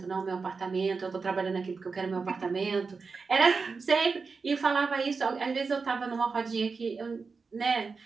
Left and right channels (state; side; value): quieter; left; 4.7 dB